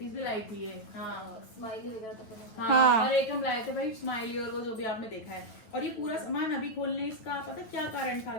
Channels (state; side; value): late; right; 9.2 ms